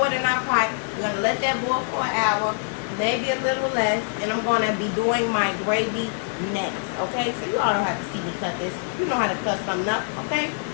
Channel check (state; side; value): silent; right; 59 dB below the other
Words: it in our pot. We're going to let that boil for an hour, maybe a little less. And I'm going to be doing my gravy next, okay? So you all don't have to see me cut this. You know how to cut something up, okay?